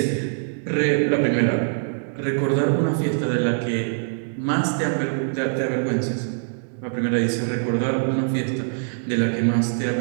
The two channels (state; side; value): silent; left; digital silence